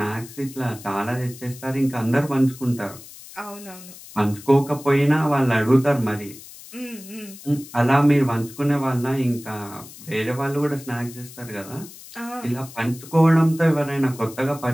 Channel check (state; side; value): noise; left; hiss, 17 dB below the sound